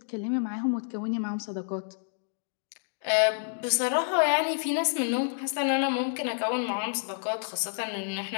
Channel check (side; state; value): right; silent; digital silence